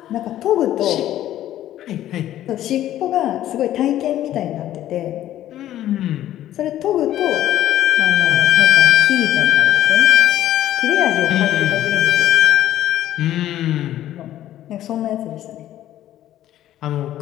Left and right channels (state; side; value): quieter; right; 12.8 dB